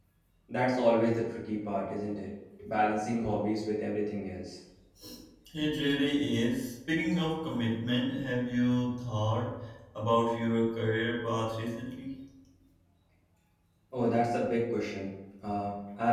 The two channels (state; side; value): identical; both; correlation 1.00